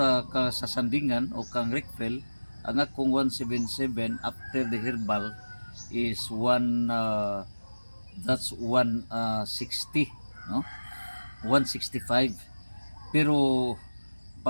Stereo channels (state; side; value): inverted; both; correlation -1.00